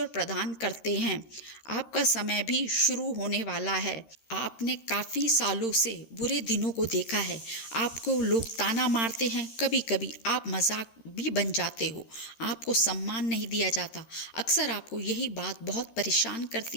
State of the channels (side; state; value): right; late; 13 ms